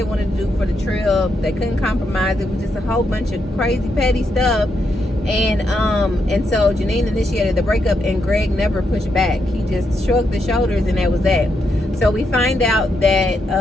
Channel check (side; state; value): both; normal; correlation 0.81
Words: wanted to do for the trip. They couldn't compromise. It was just a whole bunch of crazy petty stuff. And so Janine initiated the breakup, and Greg never pushed back. He just shrugged the shoulders, and that was that. So we find out that